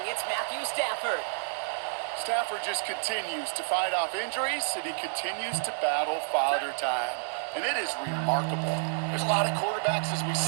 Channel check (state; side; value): silent; left; 58 dB below the other